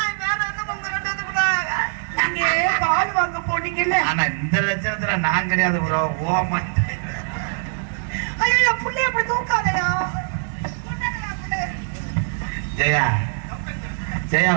வேற என்ன உங்க ரெண்டு வந்து கூட நீங்க பால் வாங்க போனீங்கல்ல. ஆனா இந்த லட்சத்துல நான் கிடையாது ப்ரோ. ஓமா ஐயோ புள்ளைய அப்படி தூக்காதையா. ஜெயா ஜெயா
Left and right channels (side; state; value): left; silent; digital silence